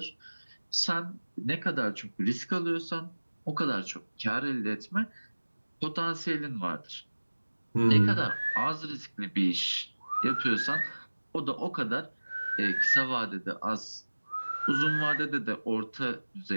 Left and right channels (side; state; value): both; inverted; correlation -1.00